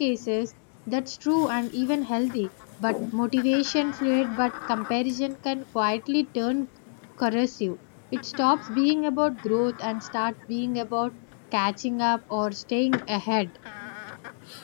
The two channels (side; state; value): right; silent; digital silence